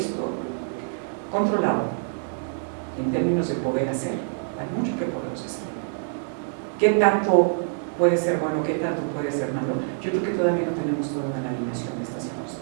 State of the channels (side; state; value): left; silent; digital silence